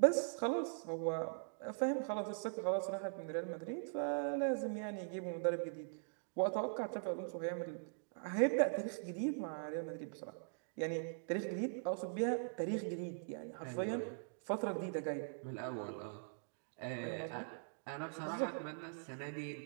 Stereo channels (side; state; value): left; silent; digital silence